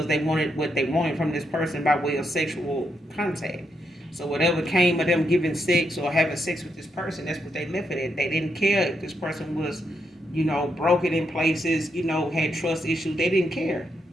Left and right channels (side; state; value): both; normal; correlation 0.80